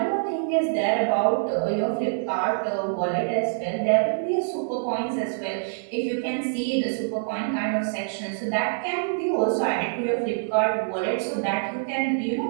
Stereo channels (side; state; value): left; silent; 61 dB below the other